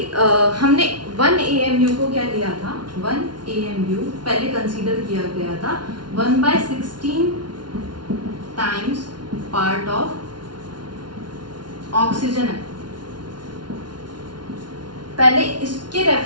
हमने 1 AMU को क्या लिया था, 1 AMU पहले कंसीडर किया गया था 1/16 टाइम्स पार्ट ऑफ ऑक्सीजन है। पहले इसके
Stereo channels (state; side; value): late; left; 0.71 ms